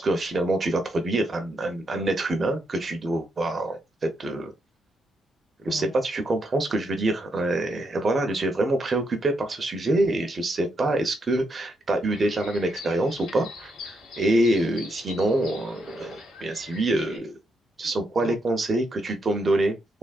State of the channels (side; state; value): both; normal; correlation 0.80